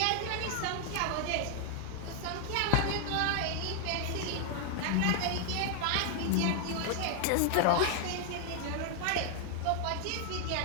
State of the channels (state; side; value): different; both; correlation 0.00